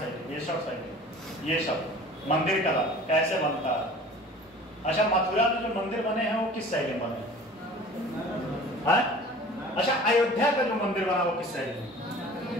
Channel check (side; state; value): both; normal; correlation 0.44